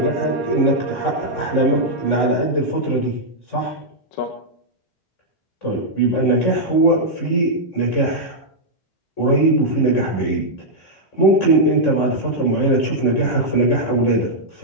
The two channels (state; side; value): late; right; 3.6 ms